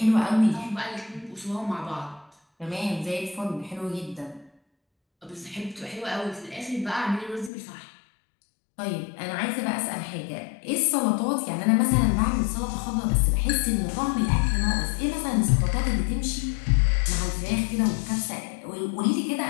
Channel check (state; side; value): drops out; right; at 7.5 s